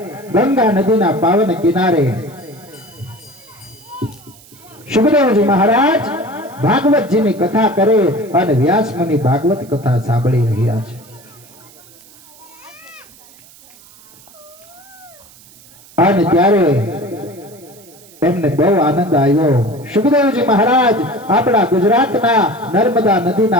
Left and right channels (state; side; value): noise; right; hiss, 24 dB below the sound